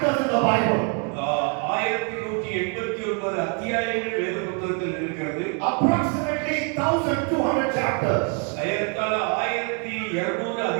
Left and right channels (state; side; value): quieter; left; 36.8 dB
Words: in the Bible. 1189 அத்தியாயங்கள் வேத புத்தகத்தில் இருக்கிறது. Approximately 1200 chapters. ஏறத்தாழ 1200